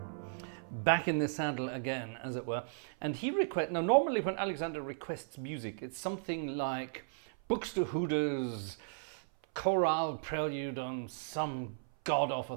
back in the saddle again, as it were. And he now normally when Alexander requests music, it's something like Buxtehude's chorale prelude on some god-awful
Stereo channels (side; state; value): left; silent; 54 dB below the other